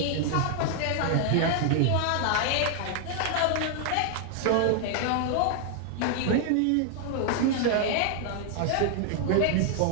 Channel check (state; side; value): different; both; correlation 0.00